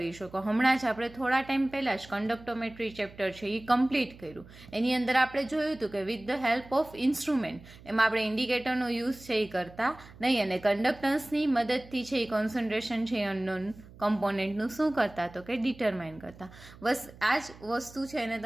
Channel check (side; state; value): right; noise; hum, 20 dB below the sound